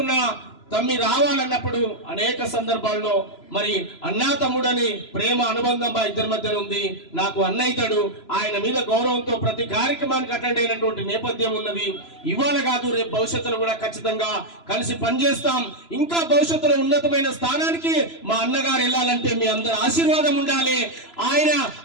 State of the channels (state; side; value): late; right; 3.0 ms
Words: తమ్మి రావాలన్నప్పుడు అనేక సందర్భాల్లో మరి అన్నా తమ్ముడని ప్రేమ అనుబంధం మా ఇద్దరి మధ్యలో ఉంది. నాకు అన్నయ్యతాడు, ఆయన మీద గౌరవంతో ప్రతి కార్యక్రమానికి అటెండ్ అయినటువంటి నేపథ్యం ఉన్నది. ఇవాళ కాదు, రేపు భవిష్యత్తులో కూడా ఖచ్చితంగా కలిసి పనిచేస్తాం. ఇంకా భవిష్యత్తులో ఉన్నతమైన స్థానానికి మా అన్నగారు వెళ్ళాలంటే మీ అందరి ఆశీర్వాదం ఉండాలి. ఆయన